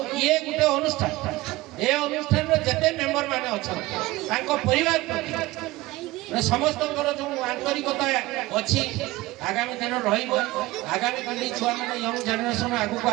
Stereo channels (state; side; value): quieter; left; 19.3 dB